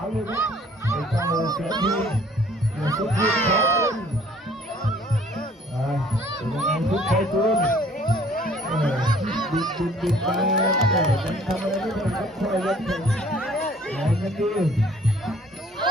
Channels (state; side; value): normal; both; correlation 0.56